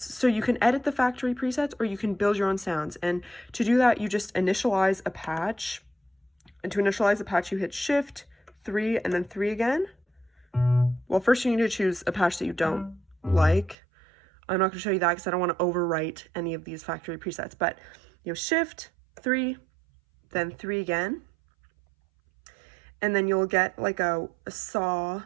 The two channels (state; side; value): drops out; left; at 13.8 s